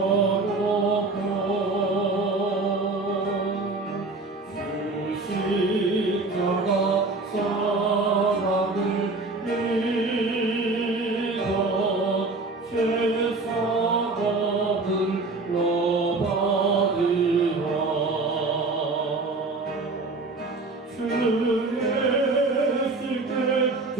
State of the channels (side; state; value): left; quieter; 3.4 dB